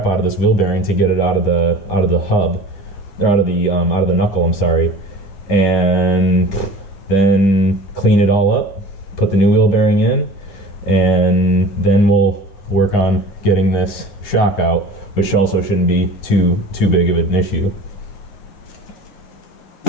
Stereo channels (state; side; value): late; right; 10 ms